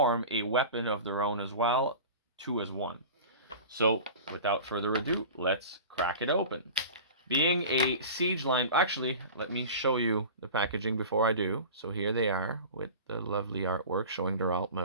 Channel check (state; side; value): inverted; both; correlation -0.35